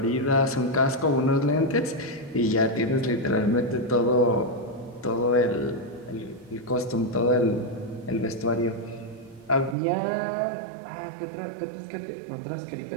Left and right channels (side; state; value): left; drops out; at 9.8 s